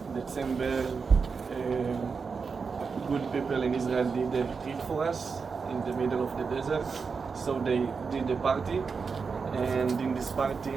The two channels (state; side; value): quieter; left; 5.2 dB